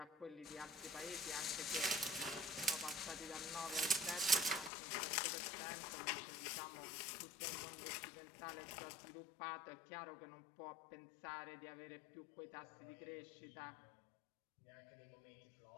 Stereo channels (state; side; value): drops out; right; at 4.7 s